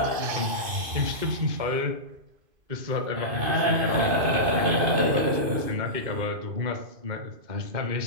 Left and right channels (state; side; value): late; left; 2.5 ms